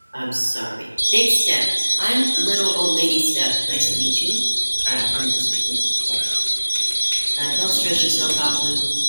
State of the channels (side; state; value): both; inverted; correlation -1.00